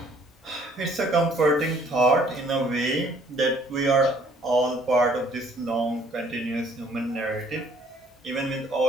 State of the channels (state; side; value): normal; both; correlation 0.60